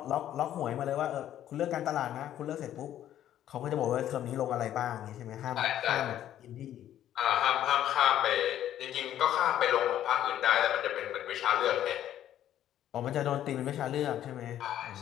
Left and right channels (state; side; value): quieter; right; 11.6 dB